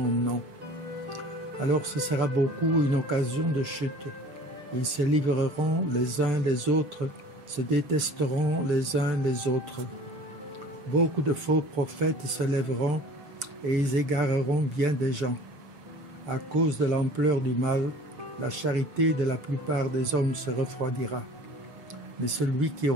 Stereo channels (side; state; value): left; late; 6.5 ms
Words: nom. Alors ce sera beaucoup une occasion de chute. Ils se livreront les uns les autres, se détesteront les uns les autres. Beaucoup de faux prophètes se lèveront et ils égareront bien des gens. À cause de l'ampleur du mal, la charité de la plupart des hommes se refroidira. Mais celui qui